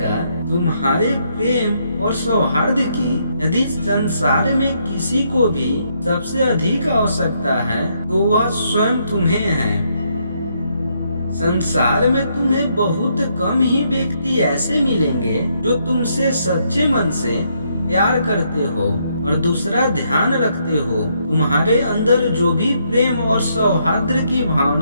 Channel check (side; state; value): both; inverted; correlation -0.74